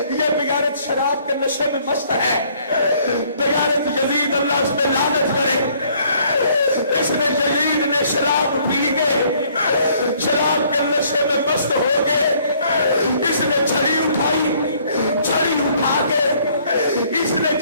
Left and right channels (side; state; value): both; inverted; correlation -0.62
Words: بغیرت شراب کے نشے میں مست ہے. بغیرت یزید اللہ اس پہ لعنت کرے. اس نے یزید نے شراب پی کے شراب کے نشے میں مست ہو گئے. اس نے چھڑی اٹھائی, چھڑی اٹھا کے اس نے